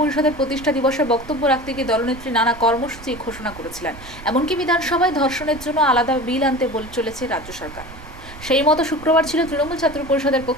প্রতিষ্ঠা দিবসে বক্তব্য রাখতে গিয়ে দলনেত্রী নানা কর্মসূচি ঘোষণা করেছিলেন। এমনকি বিধানসভায় ধর্ষণের জন্য আলাদা বিল আনতে বলে চলেছে রাজ্য সরকার। সেই মতো শুক্রবার ছিল তৃণমূল ছাত্র পরিষদের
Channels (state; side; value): noise; right; rumble, 16 dB below the sound